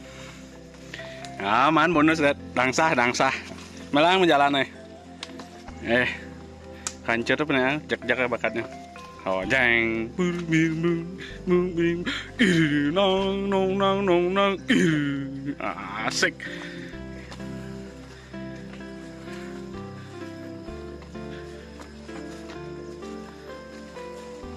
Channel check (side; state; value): both; identical; correlation 1.00